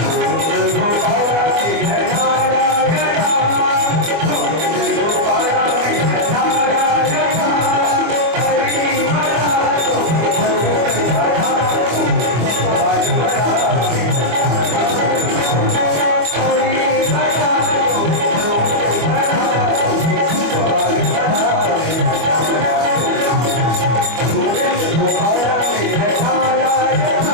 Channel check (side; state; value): left; late; 25 ms